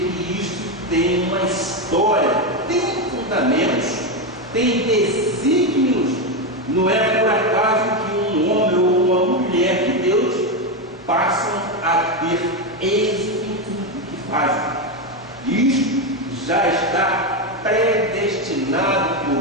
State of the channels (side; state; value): both; normal; correlation 0.10